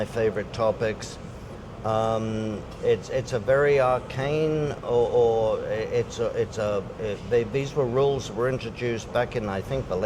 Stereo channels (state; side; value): identical; both; correlation 1.00